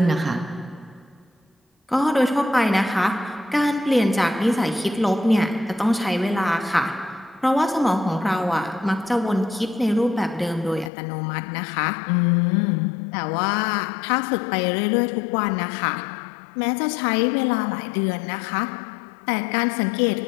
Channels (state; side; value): drops out; right; at 10.9 s